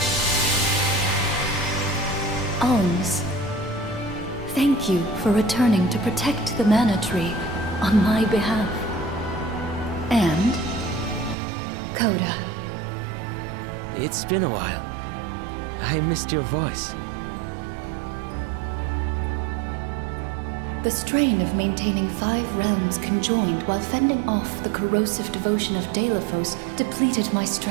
Alms, thank you for returning to protect the Mana Tree on my behalf. And Coda. It's been a while. I missed your voice. The strain of maintaining 5 realms conjoined while fending off the corrosive devotion of De La Fosse depleted my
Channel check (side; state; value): left; drops out; at 11.4 s